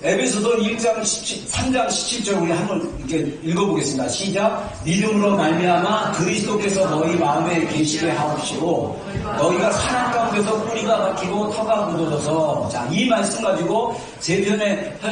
에베소서 3장 17절 우리 한번 이렇게 읽어보겠습니다. 시작. 믿음으로 말미암아 그리스도께서 너희 마음에 계시게 하옵시고 너희가 사랑 가운데서 뿌리가 박히고 터가 굳어져서, 자, 이 말씀 가지고 세 편의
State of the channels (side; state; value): both; identical; correlation 1.00